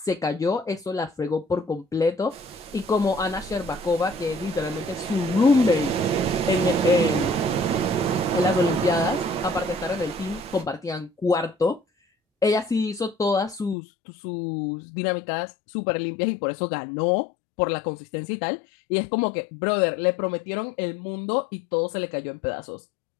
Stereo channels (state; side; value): drops out; right; at 13.8 s